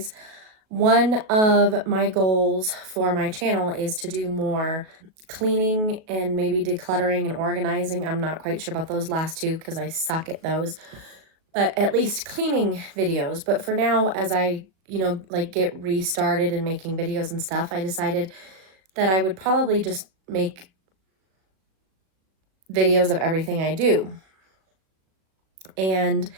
One of my goals for my channel is to do more cleaning and maybe decluttering and organizing. I'm not quite sure about those last two because I suck at those, but at least cleaning videos. But for now, as I, like get restarted and making videos and stuff, I decided that I would probably just make videos of everything I do. And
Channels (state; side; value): late; left; 37 ms